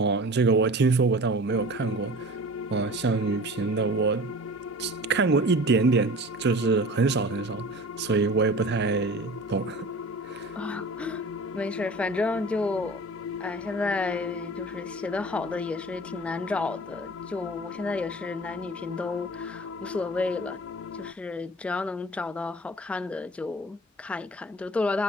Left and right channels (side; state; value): both; normal; correlation 0.40